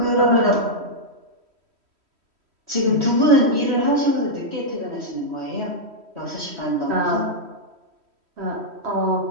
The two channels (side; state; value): left; late; 3.1 ms